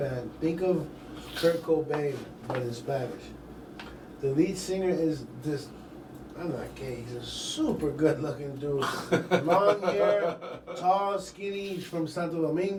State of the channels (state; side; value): identical; both; correlation 1.00